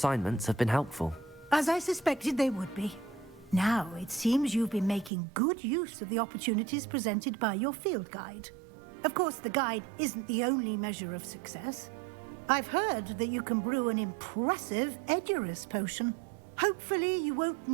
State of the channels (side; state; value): left; drops out; at 5.1 s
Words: have been helpful. As I suspected they would be. Now, it seems you've been making good use of the opportunities presented by your field guide. Of course, the guide isn't the only measure of success. I've heard that you can brew an impressive Edurus potion. Hopefully, you won't